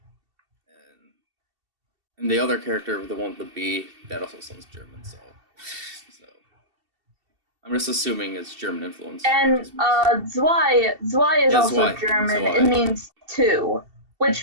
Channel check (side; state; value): left; late; 2.7 ms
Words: And the other character, the one with the B, that also sounds German. So I'm just assuming it's German influence. And Zwei is also German. Zwei. It means two,